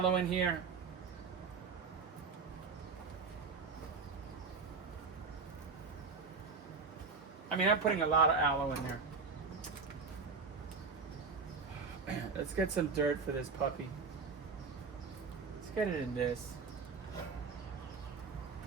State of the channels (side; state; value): left; quieter; 5.0 dB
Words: in here. I mean, I'm putting a lot of aloe in there. Let's get some dirt for this puppy. Let's get it in this.